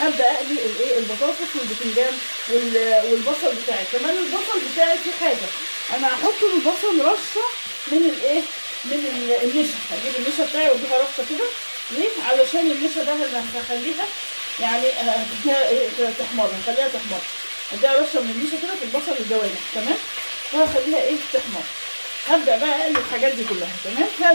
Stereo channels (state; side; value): inverted; both; correlation -1.00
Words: اقلي الايه البطاطس والبتنجان والبصل بتاعي. كمان البصل بتاعي في حاجه، انا هحط البصل رشه من الايه من النشا. هجيب النشا بتاعي واديها رشه كده. ليه؟ علشان النشا ده اللي هخليها يعني تحمر، هخليها تحمر. اديها رشه من النشا كده في البصل الجوانح. تمام، وهخليها ايه تحمر. هبدا بقى اقلب الحاجات دي كلها. تمام،